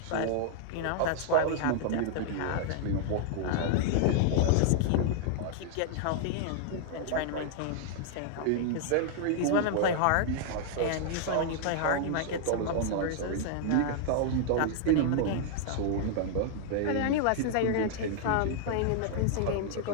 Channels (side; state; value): both; different; correlation -0.01